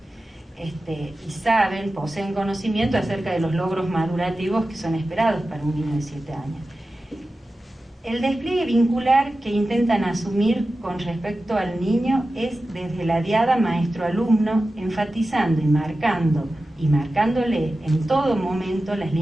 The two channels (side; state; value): both; normal; correlation 0.94